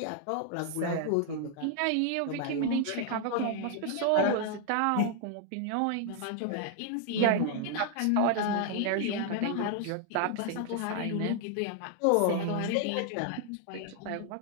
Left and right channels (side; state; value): both; different; correlation 0.00